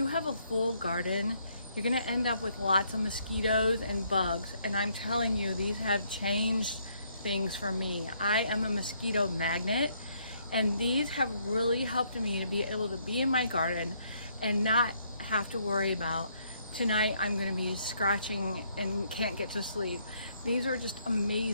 have a full garden, you're gonna end up with lots of mosquitoes and bugs, and I'm telling you, these have changed things for me. I am a mosquito magnet, and these have really helped me to be able to be in my garden and not have to worry about tonight I'm gonna be scratching and can't get to sleep. These are just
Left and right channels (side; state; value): both; inverted; correlation -0.70